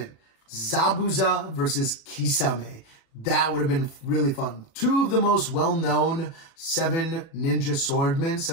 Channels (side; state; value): right; late; 36 ms